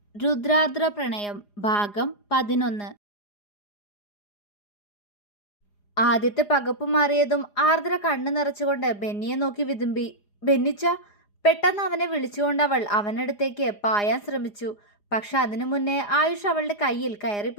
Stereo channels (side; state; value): right; late; 4.9 ms